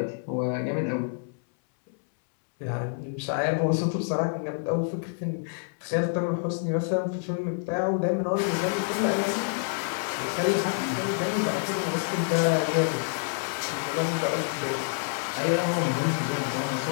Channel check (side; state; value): right; silent; 60 dB below the other